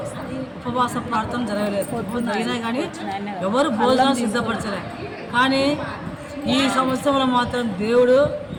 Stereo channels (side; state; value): both; identical; correlation 1.00